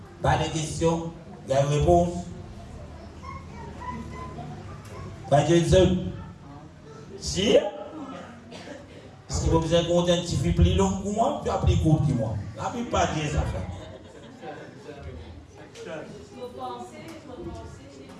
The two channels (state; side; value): identical; both; correlation 1.00